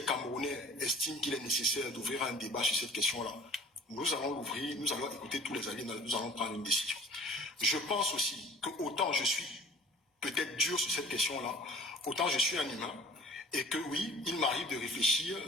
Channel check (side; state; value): both; normal; correlation 0.49